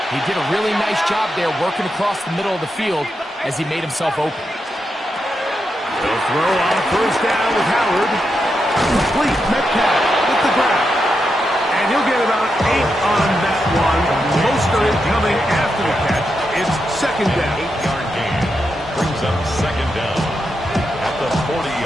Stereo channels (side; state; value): both; normal; correlation 0.85